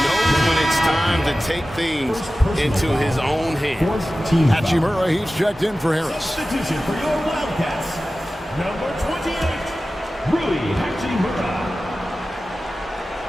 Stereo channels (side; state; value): both; normal; correlation 0.95